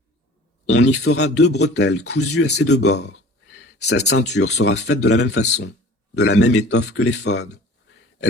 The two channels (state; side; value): normal; both; correlation 0.45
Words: On y fera 2 bretelles cousues à ses 2 bords. Sa ceinture sera faite de la même façon, de la même étoffe que l'éphod.